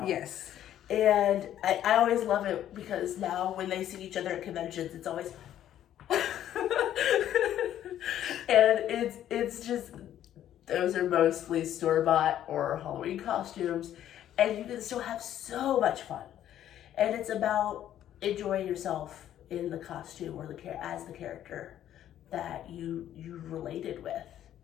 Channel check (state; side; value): quieter; right; 11.4 dB